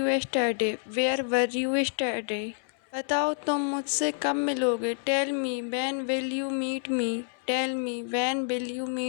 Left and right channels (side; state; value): right; silent; 59 dB below the other